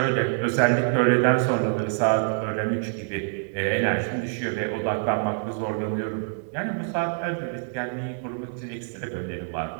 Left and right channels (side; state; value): left; silent; digital silence